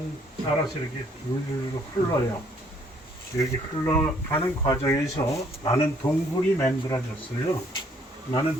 따라서 이렇게 줄줄 흘러요. 여기 흘러가는 과정에서 많은 동굴이 만들어졌어요. 많은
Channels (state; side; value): normal; both; correlation 0.64